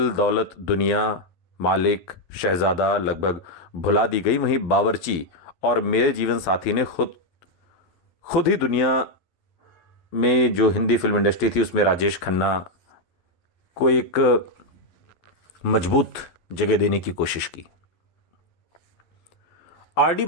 दौलत दुनिया, मालिक, शहजादा लगभग भुला दी गई, वहीं बावर्ची और मेरे जीवन साथी ने खुद ही दुनिया में जो हिंदी फिल्म इंडस्ट्री थी उसमें राजेश खन्ना को एक मजबूत जगह देने की कोशिश की। आर.डी.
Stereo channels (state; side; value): late; right; 12 ms